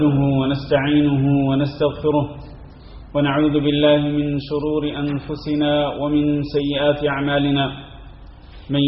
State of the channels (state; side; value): identical; both; correlation 1.00